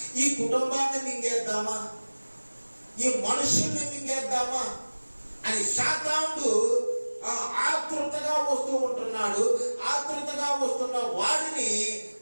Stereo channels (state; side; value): inverted; both; correlation -1.00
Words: ఈ కుటుంబాన్ని మింగేద్దామా, ఈ మనుషుల్ని మింగేద్దామా అని సాతానుడు ఆతృతగా వస్తూ ఉంటున్నాడు. ఆతృతగా వస్తున్న వాడిని